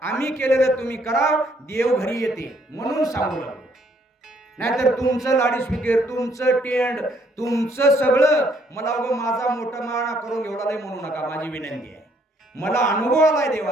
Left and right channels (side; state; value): both; normal; correlation 0.67